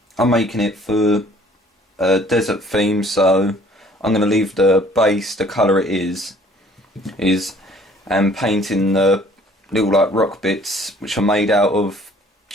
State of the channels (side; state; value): both; normal; correlation 0.56